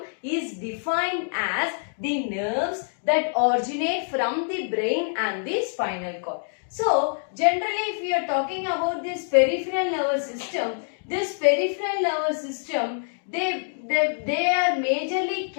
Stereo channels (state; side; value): silent; right; digital silence